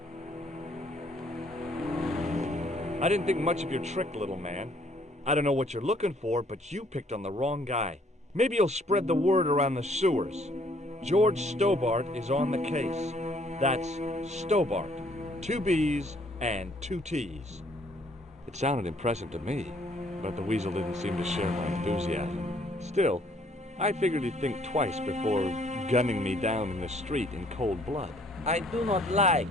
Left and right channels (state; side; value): normal; both; correlation 0.63